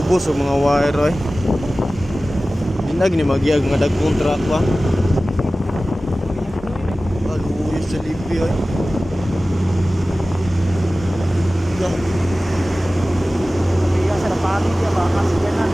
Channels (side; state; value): both; normal; correlation 0.96